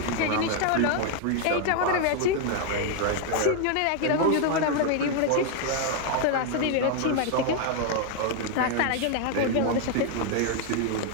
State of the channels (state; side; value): different; both; correlation 0.00